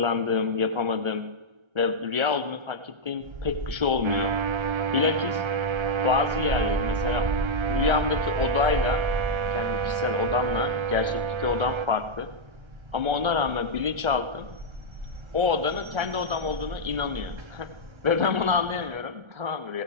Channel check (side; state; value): left; late; 1.3 ms